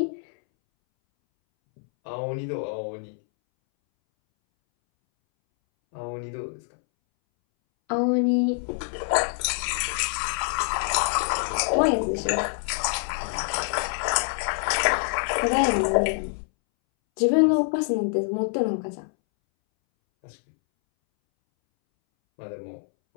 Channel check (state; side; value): silent; right; 61 dB below the other